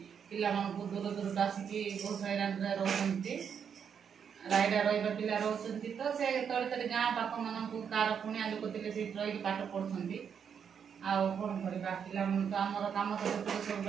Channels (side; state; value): left; quieter; 7.4 dB